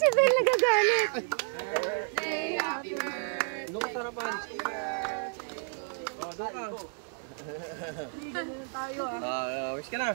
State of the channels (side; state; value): left; silent; 57 dB below the other